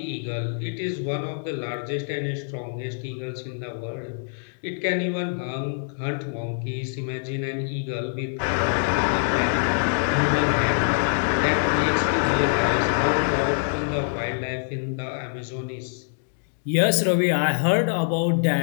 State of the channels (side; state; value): right; silent; digital silence